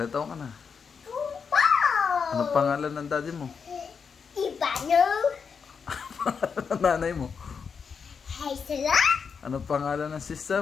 taon ka na? Anong pangalan ng daddy mo? Ivano. Anong nanay mo? Haisela. Anong pangalan ng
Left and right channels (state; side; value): quieter; right; 6.0 dB